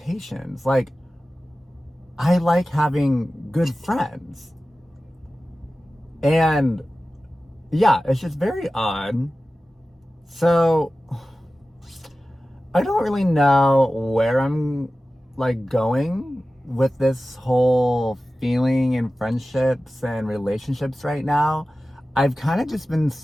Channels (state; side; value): normal; both; correlation 0.95